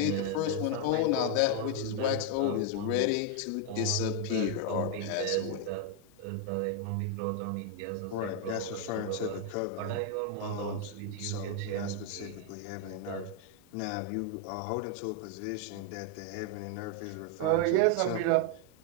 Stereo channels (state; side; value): different; both; correlation 0.00